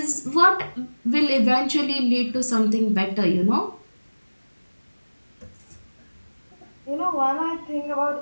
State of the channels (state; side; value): inverted; both; correlation -1.00